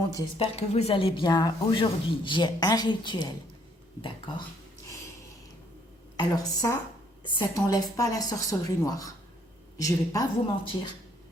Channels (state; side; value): normal; both; correlation 0.66